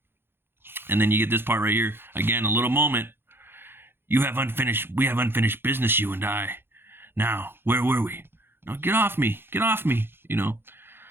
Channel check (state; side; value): late; left; 0.11 ms